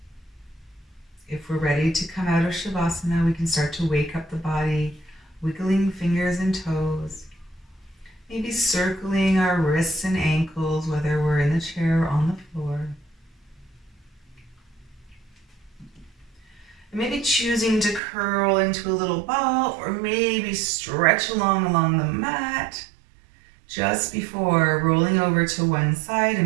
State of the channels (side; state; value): left; drops out; at 18.0 s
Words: If we're ready to come out of Shavasana, we can start to wake up the body, wiggling fingers and toes, maybe circling our wrists and ankles, whether we're in the chair or on the floor. And maybe choosing to curl into a little ball or maybe stretch along the mat just before rolling over to one side